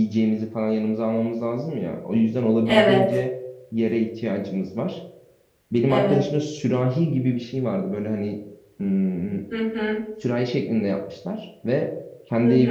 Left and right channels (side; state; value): both; identical; correlation 1.00